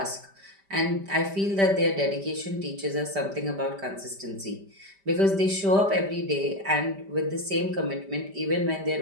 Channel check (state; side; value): late; left; 5.1 ms